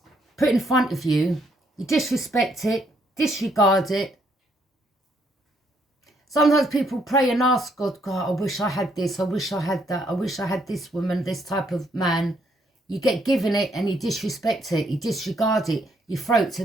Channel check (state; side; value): normal; both; correlation 0.71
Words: put in front of you. You disrespect it. Disregard it. Sometimes people pray and ask God, God, I wish I had this. I wish I had that. I wish I had this woman, this type of man. You get given it and you disrespect it. You disregard it. You throw it to